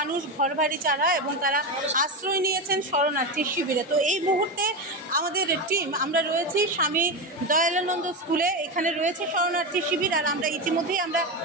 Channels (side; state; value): both; normal; correlation 0.15